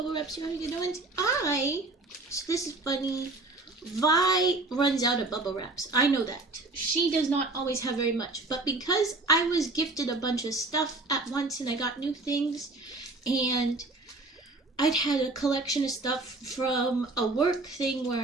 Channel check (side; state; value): left; quieter; 3.1 dB